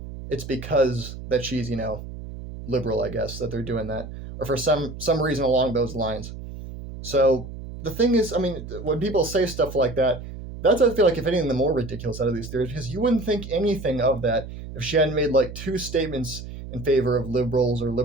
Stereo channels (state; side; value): noise; right; hum, 11 dB below the sound